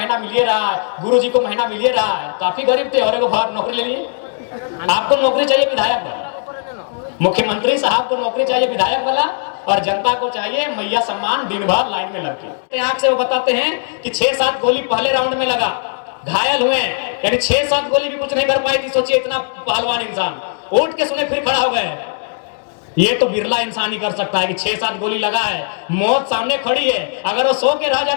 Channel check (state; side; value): silent; right; digital silence